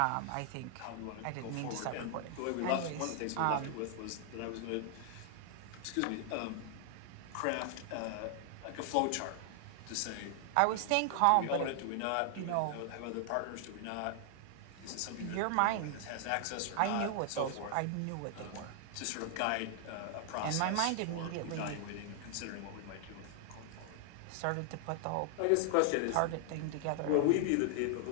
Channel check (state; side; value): different; both; correlation 0.00